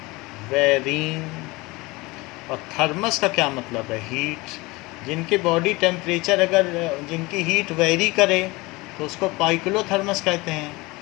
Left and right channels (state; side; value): quieter; right; 22.9 dB